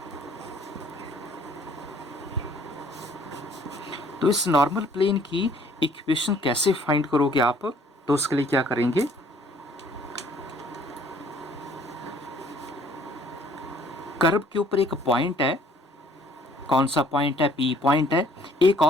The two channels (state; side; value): normal; both; correlation 0.59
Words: तो इस नॉर्मल प्लेन की इक्वेशन कैसे फाइंड करोगे आप, तो उसके लिए क्या करेंगे, कर्व के ऊपर एक पॉइंट है, कौन सा पॉइंट है, पी पॉइंट है। एक